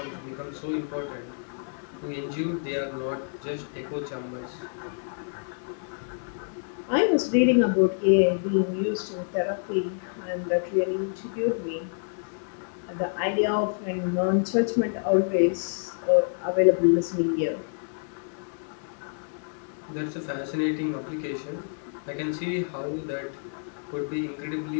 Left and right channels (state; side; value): silent; right; digital silence